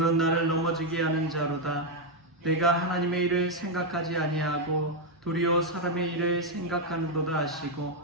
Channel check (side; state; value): both; normal; correlation 0.01